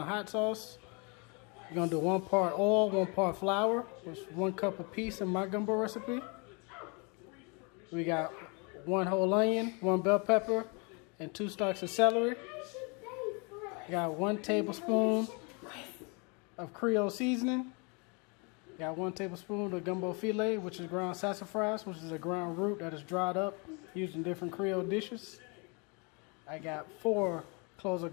hot sauce. We're gonna do 1 part oil, 1 part flour, which is 1 cup apiece in my gumbo recipe. We got 1 whole onion, 1 bell pepper, and 2 stalks of celery. We got 1 tablespoon of Creole seasoning. We got 1 tablespoon of gumbo filet, which is ground sassafras, which is a ground root that is dried up used in different Creole dishes. I got 4 cloves of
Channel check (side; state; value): right; quieter; 32.2 dB